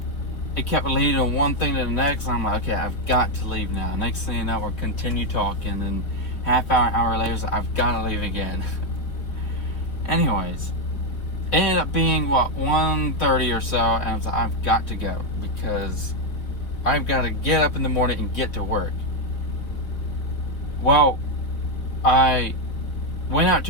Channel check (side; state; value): right; late; 4.5 ms